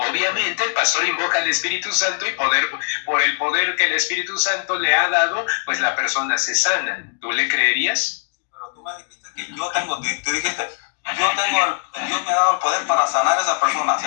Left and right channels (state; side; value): silent; right; digital silence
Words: el pastor invoca al Espíritu Santo y por el poder que el Espíritu Santo le ha dado, pues la persona se sana. ¿Tú le creerías? Sí, pero tú me dijiste que tú dijiste, Dios me ha dado el poder para sanar a esa persona. O